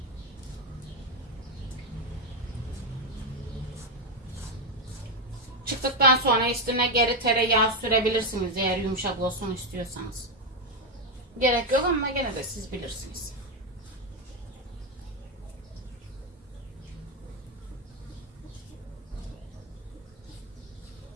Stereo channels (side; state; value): both; normal; correlation 0.06